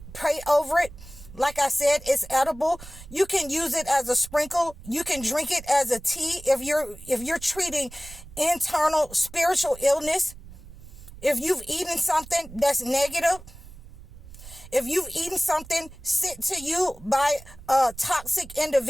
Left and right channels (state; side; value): noise; right; rumble, 17 dB below the sound